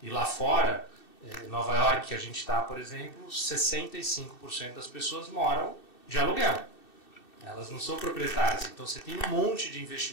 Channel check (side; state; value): right; late; 2.6 ms